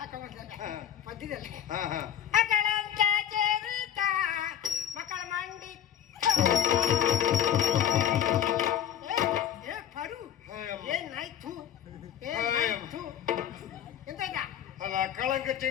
ಮಧ್ಯದಲ್ಲಿ ಹಾ ಹಾ ಮಕ್ಕಳ ಮಂಡಿ ಪರು ಏನಾಯ್ತು ಏನಾಯ್ತು ಎಂತ ಈಗ ಅಲ್ಲ ಕಳಂಕ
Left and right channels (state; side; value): quieter; right; 9.9 dB